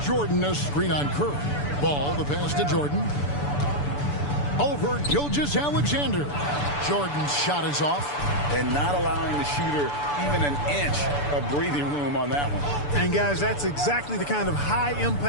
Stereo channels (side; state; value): right; late; 6.9 ms